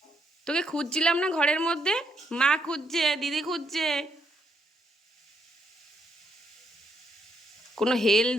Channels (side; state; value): both; normal; correlation 0.75